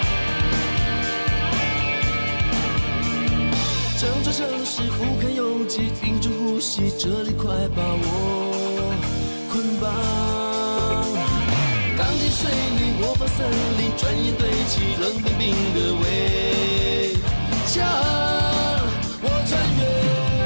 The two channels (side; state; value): both; inverted; correlation -1.00